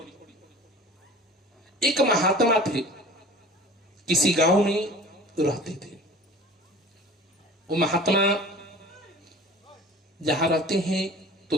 एक महात्मा थे, किसी गांव में रहते थे। वो महात्मा जहां रहते हैं तो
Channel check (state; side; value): normal; both; correlation 0.41